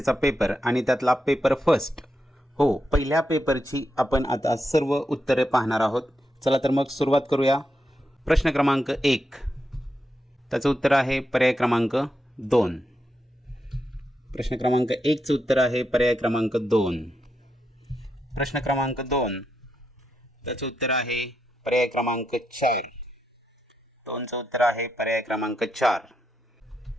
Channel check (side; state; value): both; normal; correlation 0.84